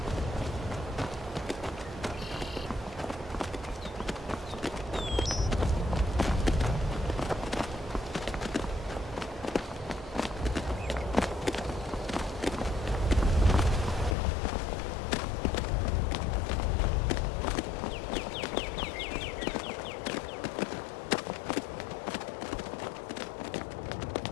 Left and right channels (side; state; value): right; drops out; at 14.2 s